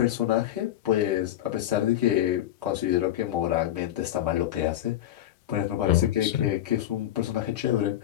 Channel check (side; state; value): right; quieter; 12.6 dB